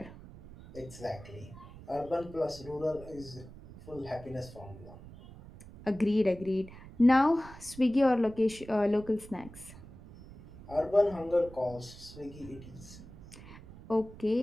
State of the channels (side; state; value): right; noise; rumble, 17 dB below the sound